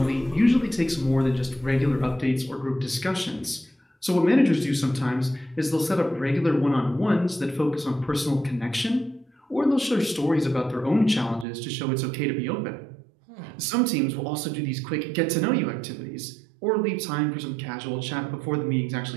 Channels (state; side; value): drops out; left; at 11.5 s